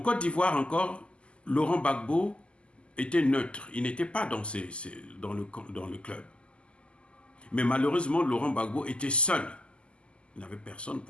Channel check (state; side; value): late; right; 0.053 ms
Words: Côte d'Ivoire encore, Laurent Gbagbo était neutre. Il n'était pas dans le club. Mais malheureusement, Laurent Gbagbo était seul. Il n'avait personne